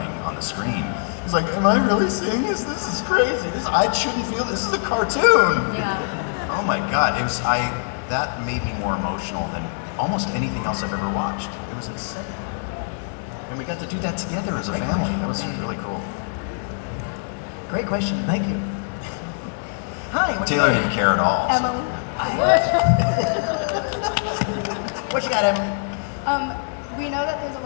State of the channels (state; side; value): silent; right; digital silence